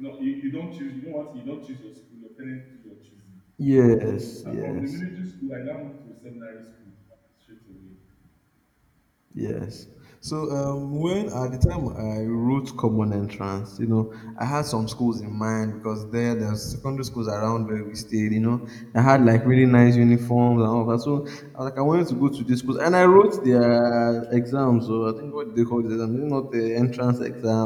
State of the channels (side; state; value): both; identical; correlation 1.00